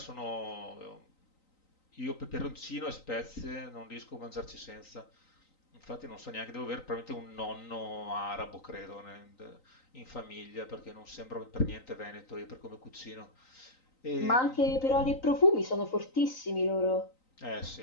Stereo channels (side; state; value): right; late; 3.9 ms